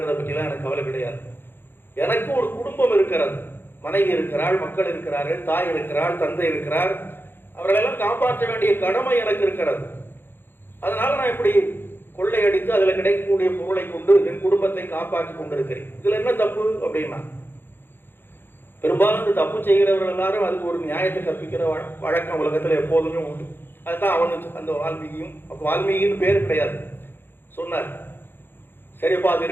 பற்றிலாம் எனக்கு கவலை கிடையாது. எனக்கு ஒரு குடும்பம் இருக்கிறது, மனைவி இருக்கிறாள், மக்கள் இருக்கிறார்கள், தாய் இருக்கிறாள், தந்தை இருக்கிறார். அவர்களெல்லாம் காப்பாற்ற வேண்டிய கடமை எனக்கு இருக்கிறது. அதனால நான் இப்படி கொள்ளையடித்து அதில் கிடைக்கக்கூடிய பொருளை கொண்டு என் குடும்பத்தை காப்பாற்றி கொண்டிருக்கிறேன். இதுல என்ன தப்பு அப்படின்னா, பெரும்பாலும் இந்த தப்பு செய்கிறவர்கள் எல்லாரும் அதுக்கு ஒரு நியாயத்தை கற்பிக்கிற வழக்கம் உலகத்துல எப்போதுமே உண்டு. அதுதான் அவனு அந்த வால்மீகியும், அப்போ வால்மீகின்னு பேர் கிடையாது, சொன்னார். சரிப்பா, அது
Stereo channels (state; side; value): late; right; 0.10 ms